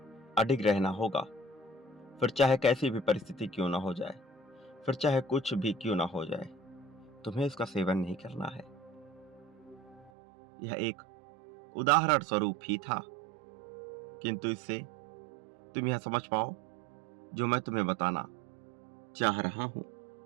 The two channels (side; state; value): left; drops out; at 10.1 s